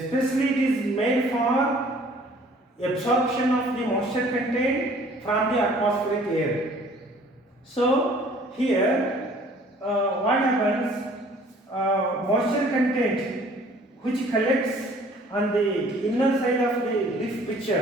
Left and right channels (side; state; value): both; normal; correlation 0.54